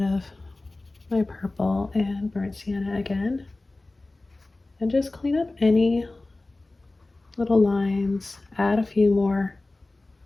of my purple and burnt sienna again, and just clean up any little lines, add a few more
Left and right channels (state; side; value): quieter; right; 3.0 dB